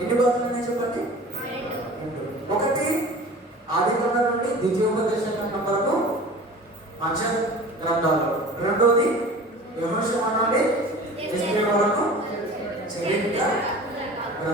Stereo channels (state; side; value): normal; both; correlation 0.40